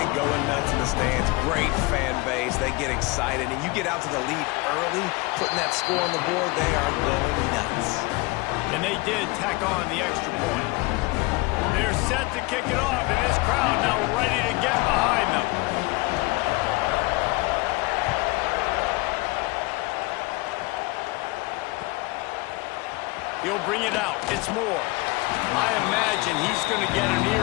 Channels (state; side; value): quieter; right; 23.7 dB